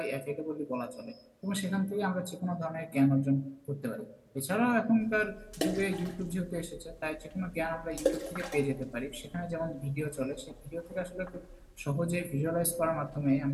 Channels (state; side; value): identical; both; correlation 1.00